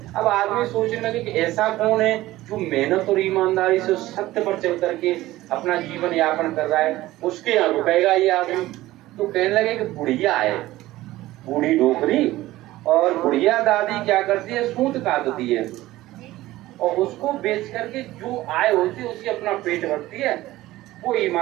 अब आदमी सोचने लगे कि ऐसा कौन है जो मेहनत और ईमानदारी से सत्य पर चल करके अपना जीवन यापन कर रहा है, उसके यहाँ रुकेगा ये आदमी। तो कहने लगे कि बुढ़िया है, बूढ़ी डोकरी, और बुढ़िया दादी क्या करती है, सूत काटती है और उसको बेच करके जो आय होती है उसकी अपना पेट भरती है। वो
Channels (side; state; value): left; quieter; 16.7 dB